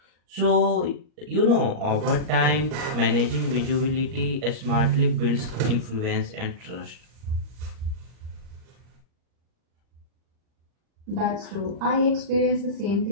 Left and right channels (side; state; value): left; late; 39 ms